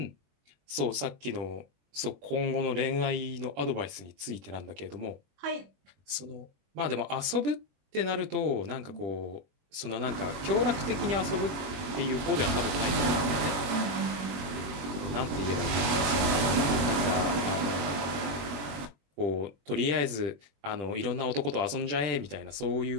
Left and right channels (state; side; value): late; left; 21 ms